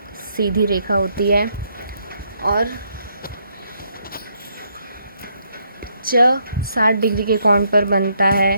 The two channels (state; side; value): inverted; both; correlation -0.73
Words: सीधी रेखा होती है और च 60 डिग्री के कोण पर बनता